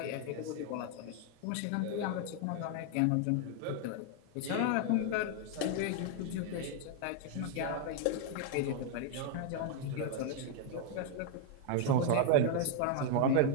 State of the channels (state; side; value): different; both; correlation 0.00